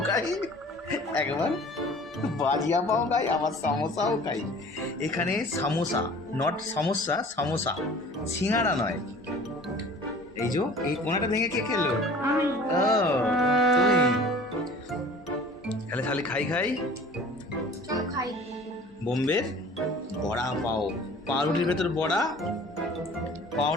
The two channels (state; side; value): normal; both; correlation 0.46